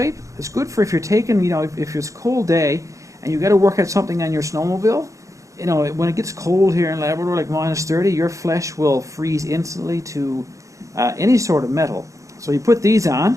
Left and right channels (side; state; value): left; late; 0.15 ms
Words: It's good for if you're taking, you know, if it's a cold day and you got to work at something on your snowmobile. You know, when it gets cold here in Labrador, like -30, your flesh will freeze instantly to any sort of metal. So you put these